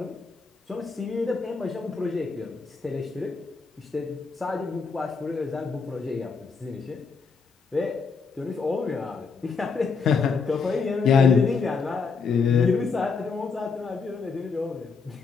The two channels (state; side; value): quieter; right; 5.0 dB